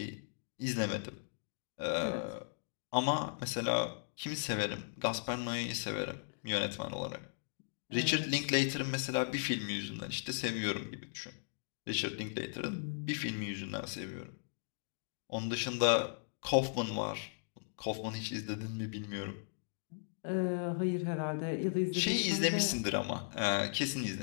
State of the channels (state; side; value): silent; right; digital silence